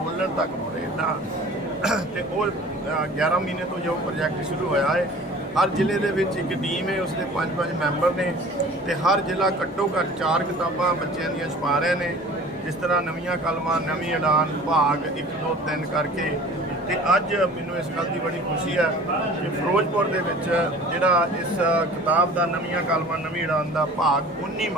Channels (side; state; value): both; normal; correlation 0.45